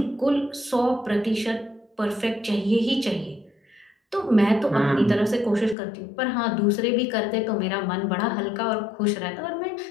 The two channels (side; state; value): right; drops out; at 5.8 s